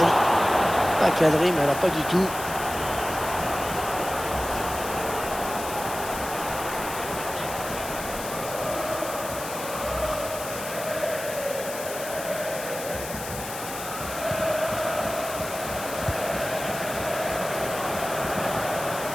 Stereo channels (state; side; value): noise; left; hiss, 9 dB below the sound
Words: pas cadrée, mais alors pas du tout.